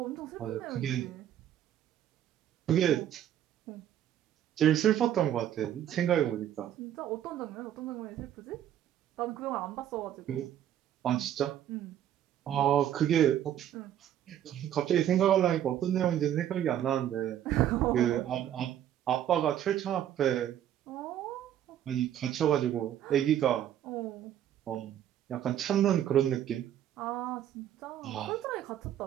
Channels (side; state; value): left; quieter; 11.0 dB